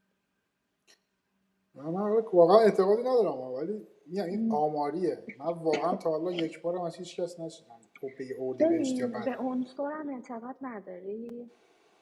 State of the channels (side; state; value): both; identical; correlation 1.00